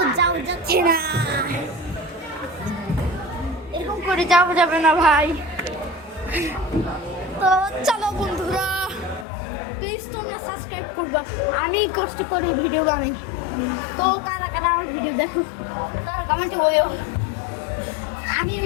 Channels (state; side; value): drops out; right; at 9.2 s